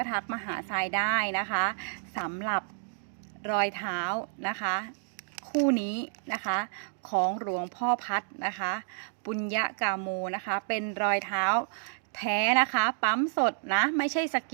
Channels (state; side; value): silent; left; digital silence